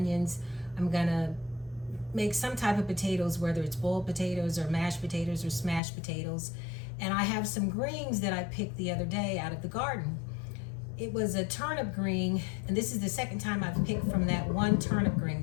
I'm going to make some type of potatoes, whether it's boiled potatoes or mashed potatoes or smashed potatoes. And I have some greens that I picked the other day out of the garden. It was a turnip green, and this is the second time I've picked from that one turnip green.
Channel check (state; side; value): drops out; right; at 5.8 s